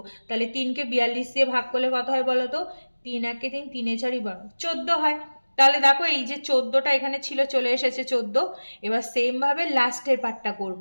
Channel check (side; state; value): both; inverted; correlation -1.00